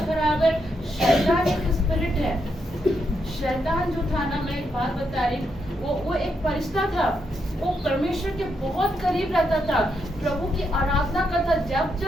खराब है। शैतान एक स्पिरिट है। शैतान जो था ना, मैं एक बात बता रही, वो एक फरिश्ता था। वो परमेश्वर परमेश्वर के बहुत करीब रहता था, प्रभु की आराधना करता। जब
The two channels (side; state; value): both; normal; correlation 0.80